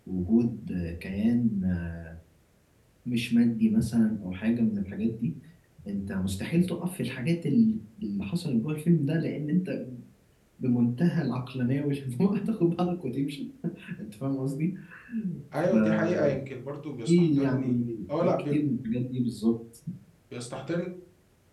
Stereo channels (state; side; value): identical; both; correlation 1.00